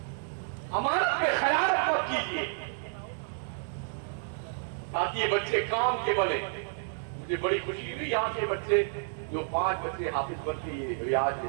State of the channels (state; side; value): silent; left; digital silence